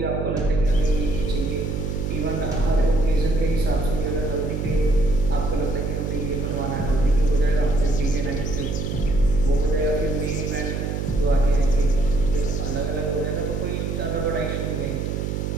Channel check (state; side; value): noise; right; hum, 2 dB below the sound